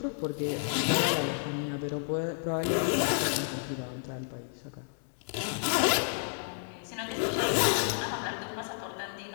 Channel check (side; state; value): right; silent; digital silence